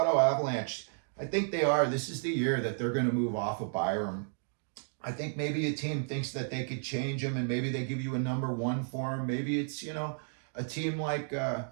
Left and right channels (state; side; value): silent; left; digital silence